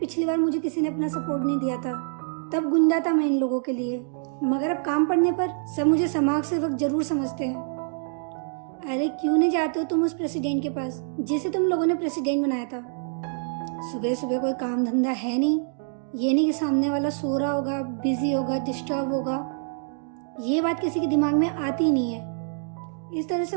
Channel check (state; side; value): silent; left; digital silence